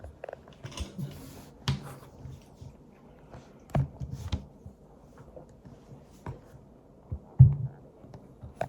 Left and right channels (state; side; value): identical; both; correlation 1.00